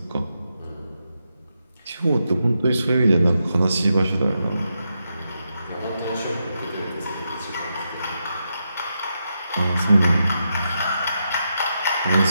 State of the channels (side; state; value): both; inverted; correlation -0.85